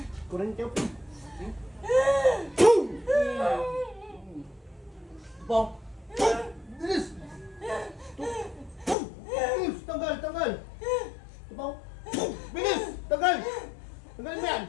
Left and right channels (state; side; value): drops out; right; at 9.0 s